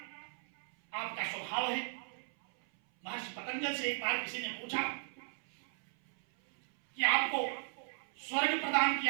आपका स्वभाव है। महर्षि पतंजल से एक बार किसी ने पूछा कि आपको स्वर्ग प्रदान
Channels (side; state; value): left; silent; 54 dB below the other